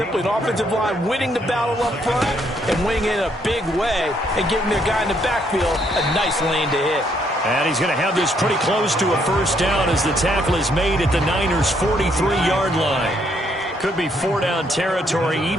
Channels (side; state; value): both; normal; correlation 0.71